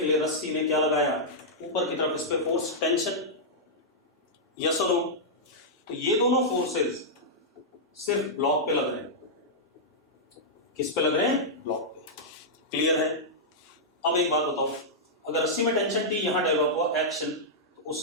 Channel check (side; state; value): both; normal; correlation -0.09